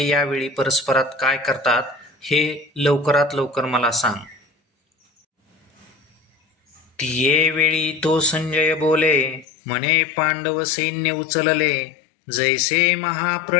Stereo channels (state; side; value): drops out; right; at 9.5 s